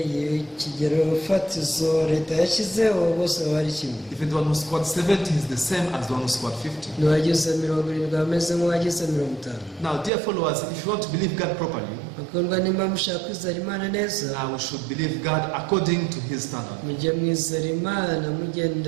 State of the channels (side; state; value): left; drops out; at 10.1 s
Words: y'ikigero fatizo leta yashyizeho bose baba ari kimwe. Even the one who scored 70 is the same as the one who scored 50. n'uwagize 70 ameze nk'uwagize 50. Now, dear followers, if you want to believe God properly, bakundwa nimba mushaka kwizera Imana neza, now we should believe God according to His standard. mujye mwizera Imana